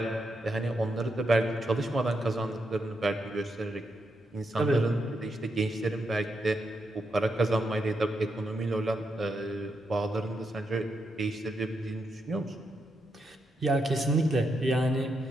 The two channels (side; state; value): both; normal; correlation 0.82